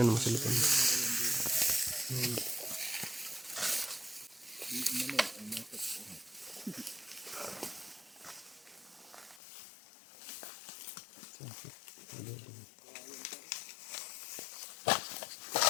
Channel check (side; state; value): right; drops out; at 9.4 s